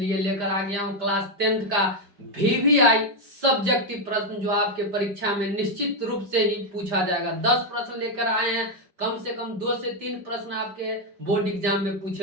लेकर आ गया हूं क्लास 10th का VVI सब्जेक्टिव प्रश्न, जो आपके परीक्षा में निश्चित रूप से ही पूछा जाएगा। 10 प्रश्न लेकर आए हैं, कम से कम 2 से 3 प्रश्न आपके बोर्ड एग्जाम में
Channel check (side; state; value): left; late; 5.0 ms